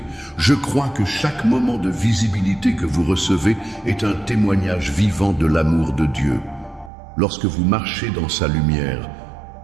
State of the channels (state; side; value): drops out; left; at 6.9 s